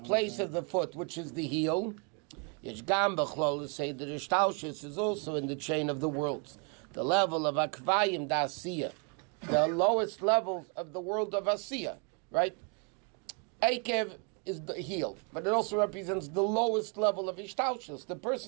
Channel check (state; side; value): quieter; left; 37.1 dB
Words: place of the foot, which is the heel. Say that Ishtalshus is also in the chain of the worlds. The level of Akvayim da Asiya, the lowest levels of the world of Asiya, right? Akev is the heel, but it also represents the lowest level of Ishtalshus. The